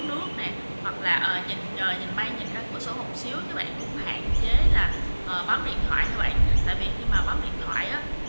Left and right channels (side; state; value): both; inverted; correlation -1.00